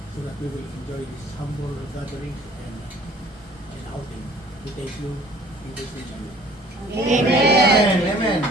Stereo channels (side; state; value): both; normal; correlation 0.52